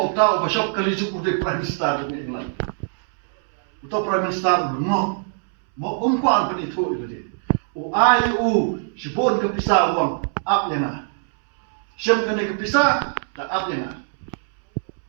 uta ba shop kali juk utai Prime Minister jong England. Uta Prime Minister no. Mo kuan pen itu dia. Ai sibon ke pisah wang up yang Siam kena kepisah, tak apa yang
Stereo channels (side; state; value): left; silent; 64 dB below the other